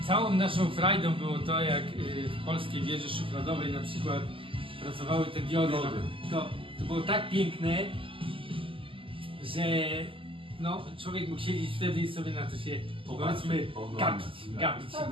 całą naszą frajdą było to, jak w polskiej wieży szufladowej na przykład pracowały te diody. To było tak piękne, że no, człowiek mógł siedzieć wtedy i sobie na to się, powiedzmy, gapić.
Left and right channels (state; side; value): late; left; 0.25 ms